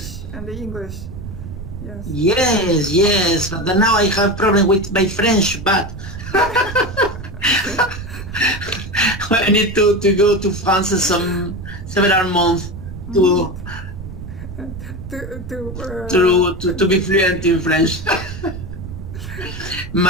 and the English. Yes. Yes, yes. But now I have problem with my French, but Okay. I need to go to France some several months Mm. to to be To fluent in French.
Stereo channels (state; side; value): noise; right; rumble, 10 dB below the sound